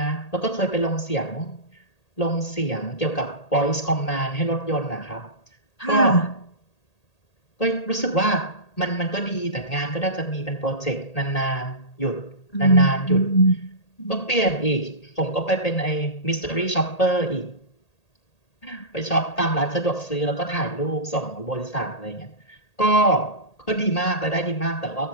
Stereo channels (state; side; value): late; right; 1.8 ms